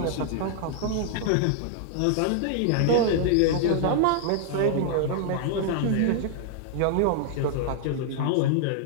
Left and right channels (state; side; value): different; both; correlation -0.01